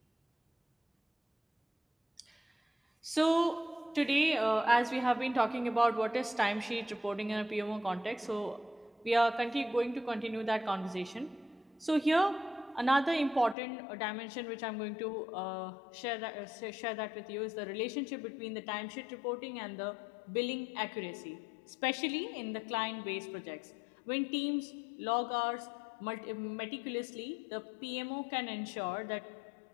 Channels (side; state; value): right; drops out; at 13.6 s